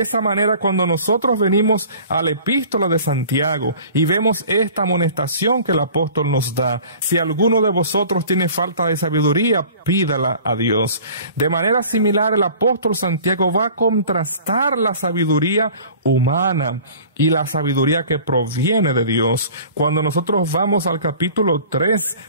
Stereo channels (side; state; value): both; inverted; correlation -0.46